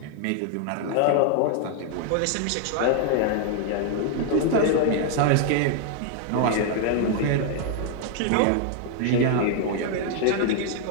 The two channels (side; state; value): both; different; correlation 0.00